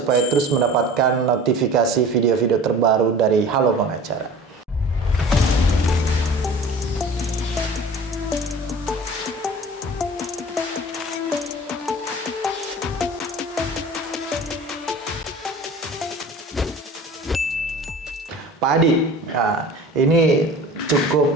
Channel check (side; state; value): both; normal; correlation 0.41